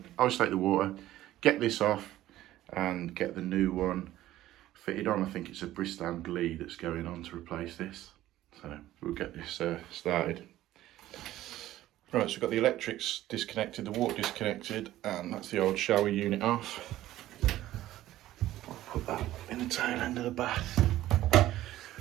to isolate the water, get this off and get the new one fitted on. I think it's a Bristol Glee that's going on to replace this, so we'll get this started. Right, so we've got the electrics disconnected, the water disconnected, and that's the old shower unit off. I'll put that in the tail end of the bath.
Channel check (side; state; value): left; quieter; 14.5 dB